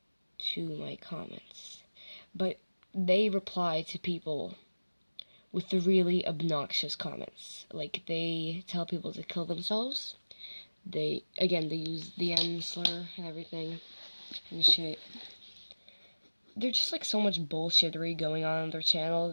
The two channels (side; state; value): both; inverted; correlation -1.00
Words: to my comments. But they reply to people with the really obnoxious comments. Like, they tell people to kill themselves. They use the N slur and everything and shit. There's just like so much bullshittery going on their channel